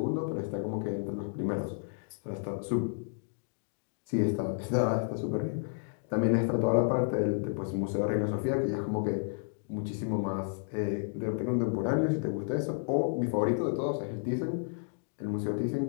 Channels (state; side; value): silent; right; digital silence